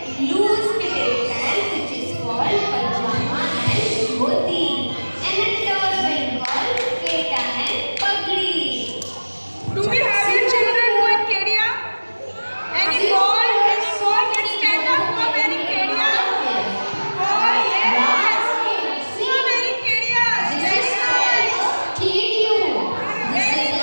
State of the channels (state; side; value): inverted; both; correlation -1.00